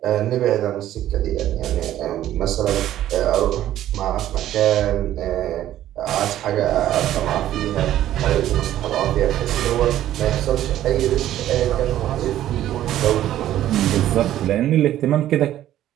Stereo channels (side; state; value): left; quieter; 12.7 dB